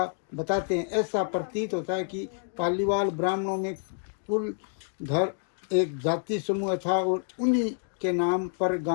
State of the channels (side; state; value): right; silent; digital silence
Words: बताते हैं। ऐसा प्रतीत होता है कि पालीवाल ब्राह्मणों में कुलधर एक जाति समूह था और उन्हीं के नाम पर